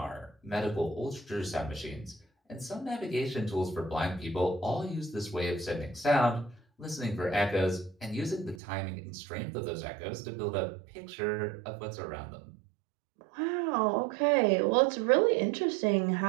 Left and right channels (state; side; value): drops out; left; at 8.6 s